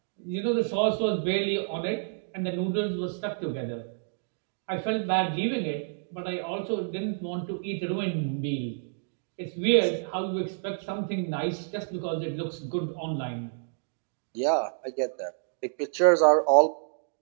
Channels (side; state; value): left; silent; digital silence